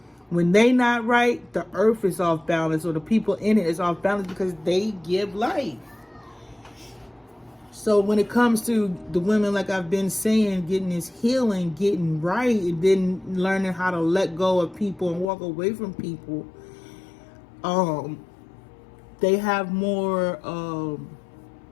When they not right, the earth is off balance, or the people in it is off balance because they give life. So when it comes to the women, like I've been saying, getting this healing, getting right, and then learning how to let go of people and walk away from people, they have more,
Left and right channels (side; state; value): right; drops out; at 15.2 s